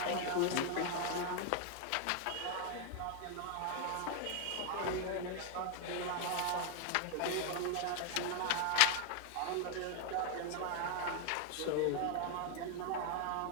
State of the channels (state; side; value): different; both; correlation 0.00